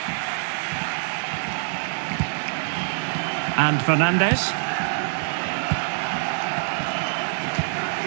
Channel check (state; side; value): silent; left; 62 dB below the other